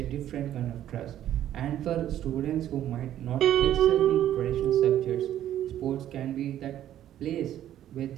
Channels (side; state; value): left; quieter; 11.7 dB